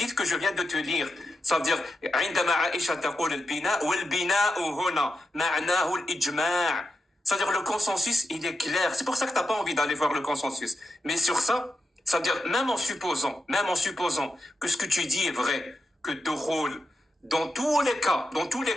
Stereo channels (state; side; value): normal; both; correlation 0.88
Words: que je viens de te lire. Ça veut dire, عندما عائشة تقول البناء والبناء هنا معناه الإجماع. C'est-à-dire, le consensus, il est clair. C'est pour ça que t'as pas envie d'aller voir le consensus. Mais sur ça, ça veut dire, même en supposant que ce que tu dis est vrai, que dukhul, dans tous les cas,